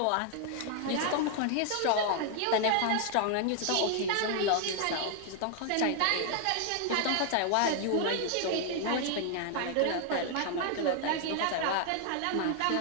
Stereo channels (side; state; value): both; different; correlation 0.00